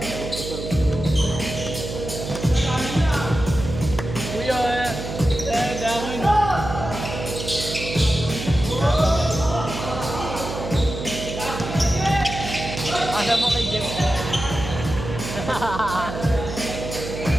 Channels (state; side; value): noise; right; hum, 7 dB below the sound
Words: Kuya, dami. Alam mo kay Jeff.